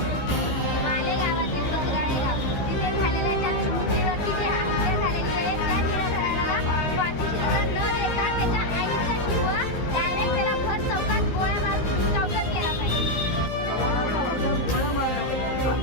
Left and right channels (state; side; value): late; right; 15 ms